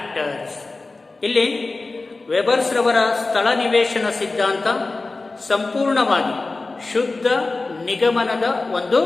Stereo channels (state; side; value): quieter; right; 3.5 dB